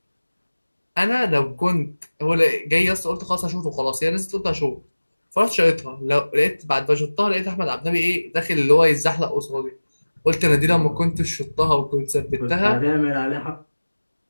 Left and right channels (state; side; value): inverted; both; correlation -1.00